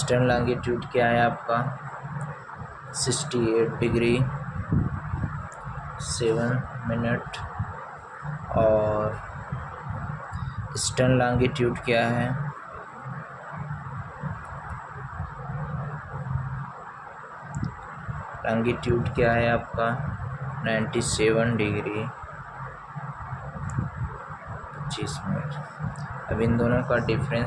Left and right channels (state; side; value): identical; both; correlation 1.00